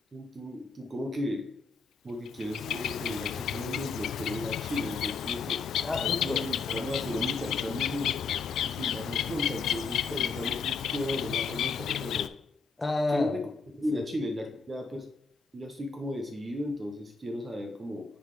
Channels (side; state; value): right; quieter; 4.4 dB